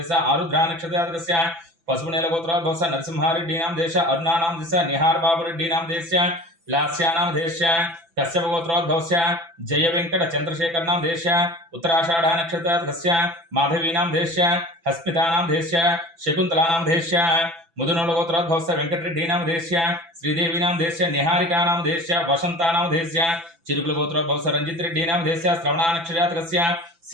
आरुद्रा नक्षत्रजातकस्य पशुपुनेलगोत्रोद्भवस्य नरसिंहा रेड्डी नामधेयस्य अरुणा नामधेयस्य निहार बाबू रेड्डी नामधेयस्य लास्या नामधेयस्य कश्यपगोत्रोद्भवस्य जय वेंकट चंद्रशेखर नामधेयस्य उत्तराषाढ़ नक्षत्रजातकस्य माधवी नामधेयस्य हस्मिता नामधेयस्य शकुंतला नामधेयस्य मुदुनोलगोत्रोद्भवस्य वेंकटरेड्डी नामधेयस्य श्रीदेवी नामधेयस्य निहारिका नामधेयस्य वसंता नामधेयस्य चिरुकुलगोत्रोद्भवस्य रंजित रेड्डी नामधेयस्य श्रवणा नक्षत्रजातकस्य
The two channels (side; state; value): left; late; 6.0 ms